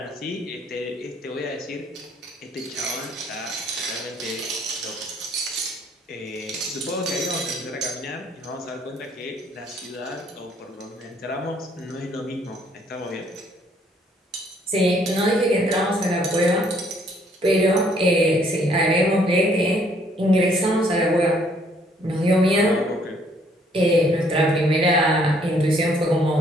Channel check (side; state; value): both; normal; correlation 0.64